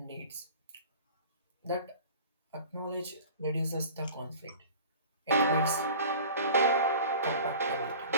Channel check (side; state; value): both; inverted; correlation -0.42